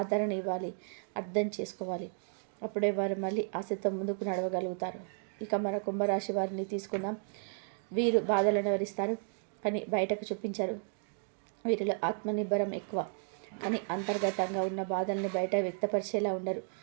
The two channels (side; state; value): left; silent; 55 dB below the other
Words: ఇవ్వాలి, అర్థం చేసుకోవాలి. అప్పుడే వారు మళ్ళీ ఆశతో ముందుకు నడవగలుగుతారు. ఇక మన కుంభరాశి వారిని తీసుకుందాం. వీరు బాధలను వివరిస్తారు కానీ బయటకు చూపించరు. వీరిలో ఆత్మనిర్భరం ఎక్కువ కానీ అంతర్గతంగా ఉన్న బాధల్ని బయట వ్యక్తపరిచేలా ఉండరు.